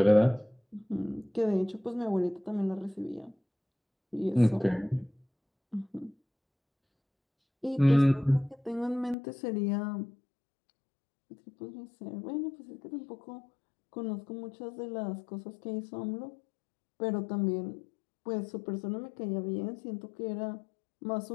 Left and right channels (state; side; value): drops out; right; at 9.2 s